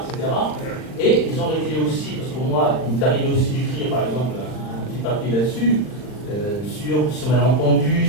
etc. Et ils ont réglé aussi, parce que moi, il m'est arrivé aussi d'écrire par exemple un petit papier là-dessus, sur ce malentendu,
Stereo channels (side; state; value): right; late; 39 ms